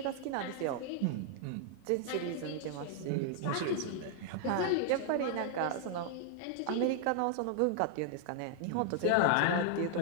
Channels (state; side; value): different; both; correlation 0.00